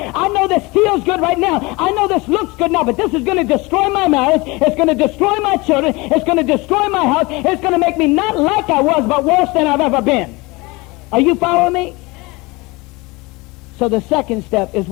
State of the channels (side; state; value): right; quieter; 24.1 dB